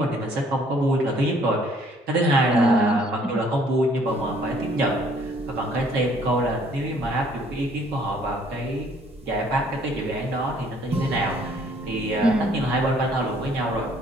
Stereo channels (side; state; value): both; normal; correlation 0.61